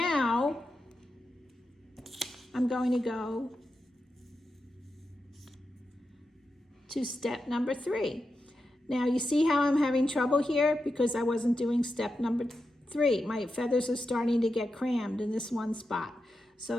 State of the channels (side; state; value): both; normal; correlation 0.89